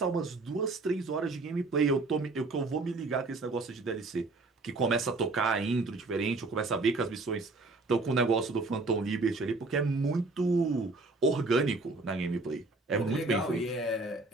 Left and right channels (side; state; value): left; quieter; 3.4 dB